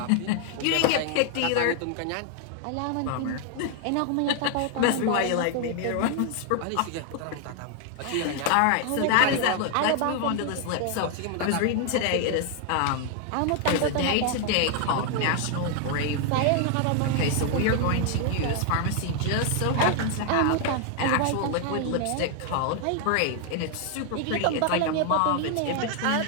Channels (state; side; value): different; both; correlation 0.00